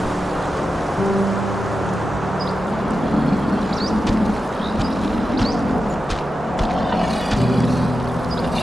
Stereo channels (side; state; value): both; normal; correlation 0.91